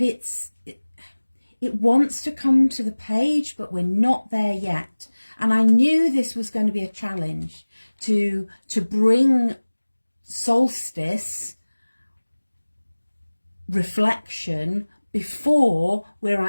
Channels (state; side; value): inverted; both; correlation -1.00